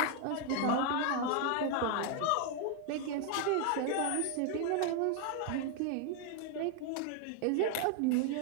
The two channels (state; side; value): different; both; correlation 0.00